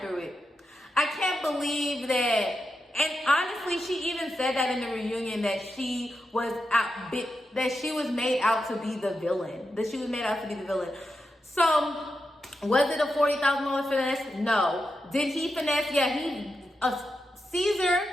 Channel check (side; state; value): both; normal; correlation 0.87